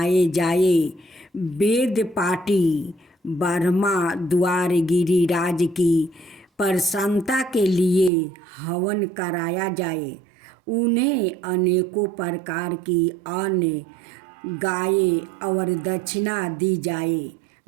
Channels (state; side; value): drops out; left; at 8.1 s